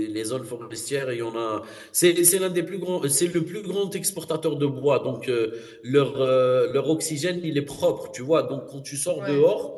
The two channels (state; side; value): identical; both; correlation 1.00